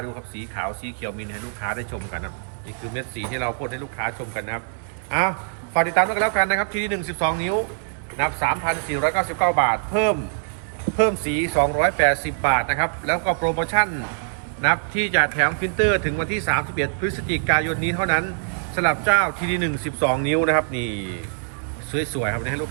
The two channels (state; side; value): silent; left; digital silence